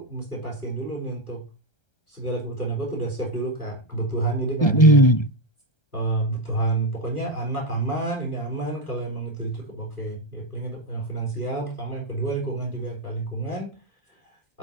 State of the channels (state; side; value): late; right; 1.3 ms